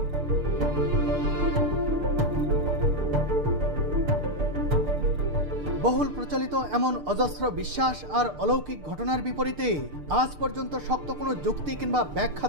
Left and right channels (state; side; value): late; left; 6.7 ms